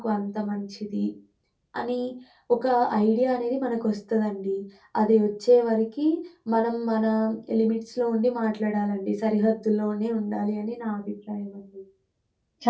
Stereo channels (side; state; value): both; identical; correlation 1.00